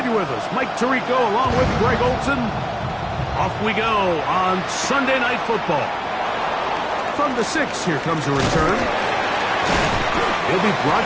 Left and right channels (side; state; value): both; identical; correlation 1.00